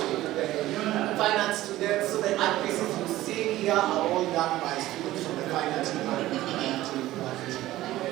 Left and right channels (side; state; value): left; quieter; 15.8 dB